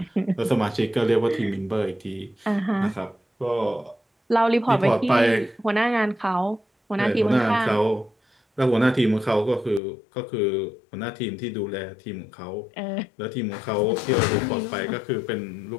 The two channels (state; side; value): drops out; right; at 9.8 s